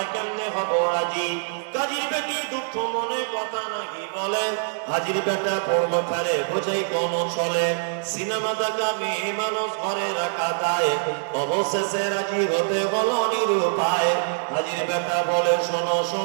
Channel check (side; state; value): left; silent; digital silence